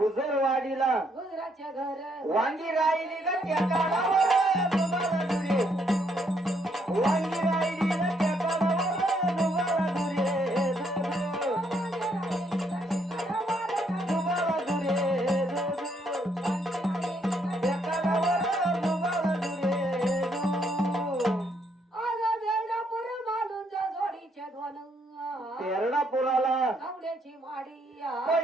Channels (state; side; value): normal; both; correlation 0.72